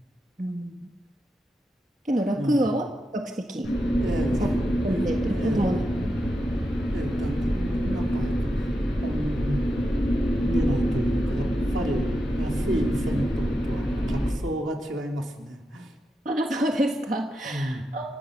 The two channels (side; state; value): both; normal; correlation 0.87